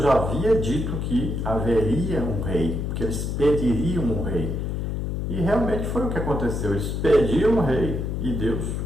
já havia dito que haveria um rei, que eles pediriam um rei. E realmente foi o que aconteceu. Eles pediram um rei e Deus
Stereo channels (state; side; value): noise; left; hum, 2 dB below the sound